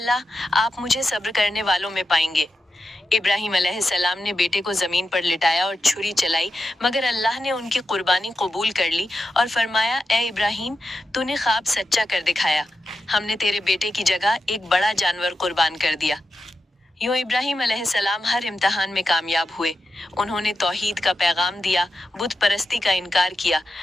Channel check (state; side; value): normal; both; correlation 0.89